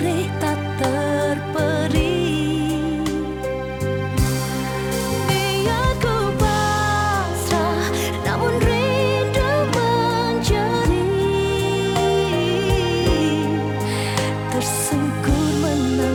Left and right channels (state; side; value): identical; both; correlation 1.00